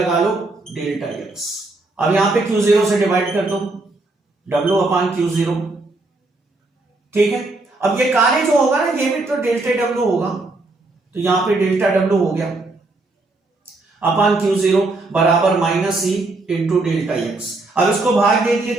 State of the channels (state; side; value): quieter; left; 3.1 dB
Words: लो डेल्टा एक्स। अब यहां पे Q0 से डिवाइड कर दो, W अपान Q0। ठीक है, अब ये कार्य जो होगा ना, ये भी तो डेल्टा W होगा, तो यहां पे डेल्टा W हो गया अपान Q0 बराबर minus E into delta x. अब इसको भाग दे दिए